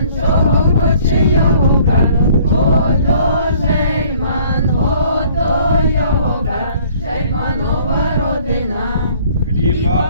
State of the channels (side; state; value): both; inverted; correlation -0.56